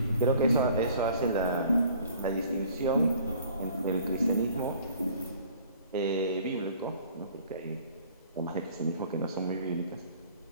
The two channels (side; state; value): both; inverted; correlation -0.53